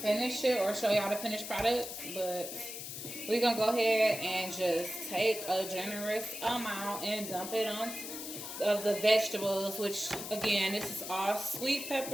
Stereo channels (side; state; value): left; noise; hiss, 8 dB below the sound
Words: finish it or show y'all the finished products, but we're gonna go ahead and just take a generous amount and dump it on of the vegetables, which again, this is all sweet